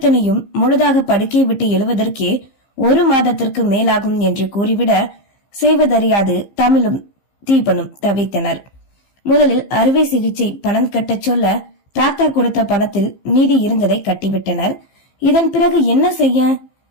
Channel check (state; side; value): late; right; 15 ms